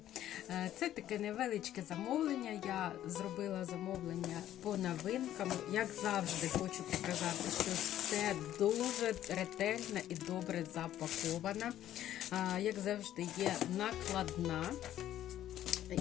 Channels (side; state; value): right; quieter; 12.2 dB